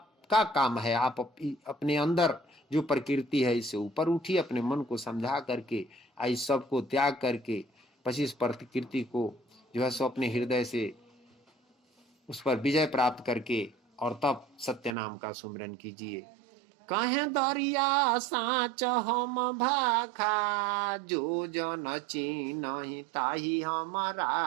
काम है, आप अपने अंदर जो प्रकृति है इससे ऊपर उठिए, अपने मन को समझा करके इस सब को त्याग करके 25 प्रकृति को जो है सो अपने हृदय से उस पर विजय प्राप्त करके और तब सत्य नाम का सुमिरन कीजिए। कहे दरिया साँच हम भाखा, जो जन चीन्हि ताहि हम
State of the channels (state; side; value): drops out; left; at 15.0 s